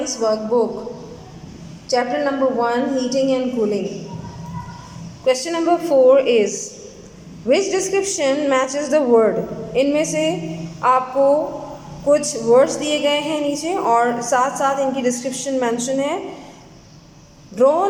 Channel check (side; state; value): both; identical; correlation 1.00